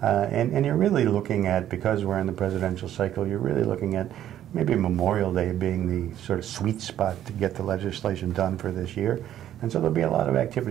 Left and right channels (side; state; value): left; quieter; 11.5 dB